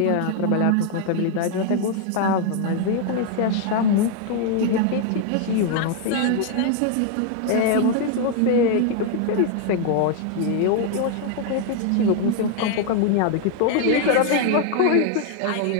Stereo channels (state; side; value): different; both; correlation 0.00